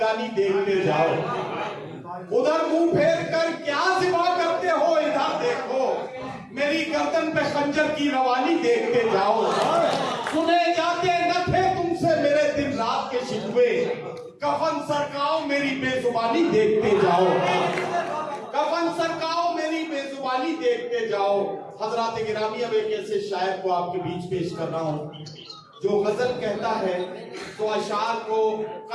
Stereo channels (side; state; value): both; identical; correlation 1.00